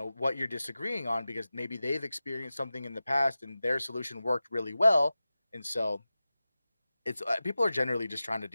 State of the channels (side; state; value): both; inverted; correlation -0.95